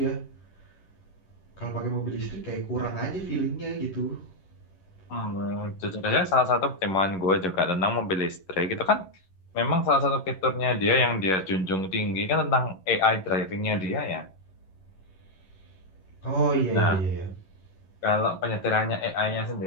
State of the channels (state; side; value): late; right; 11 ms